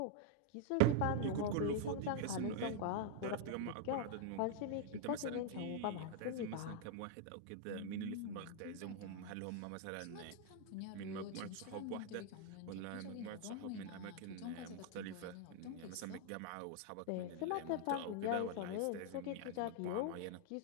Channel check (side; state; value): both; different; correlation 0.00